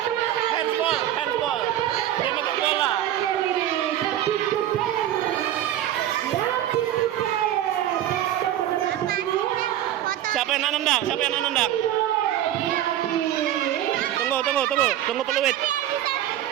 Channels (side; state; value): left; quieter; 12.1 dB